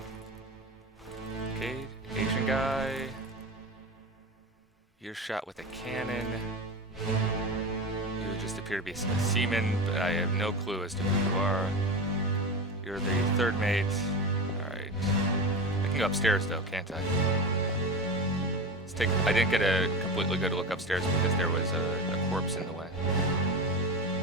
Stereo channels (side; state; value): both; normal; correlation 0.24